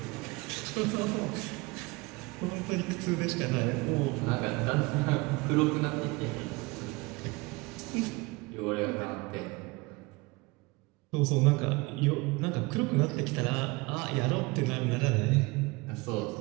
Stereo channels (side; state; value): left; quieter; 24.7 dB